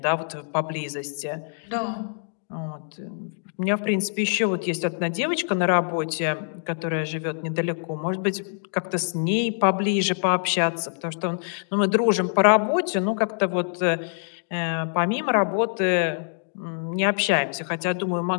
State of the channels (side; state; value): right; silent; digital silence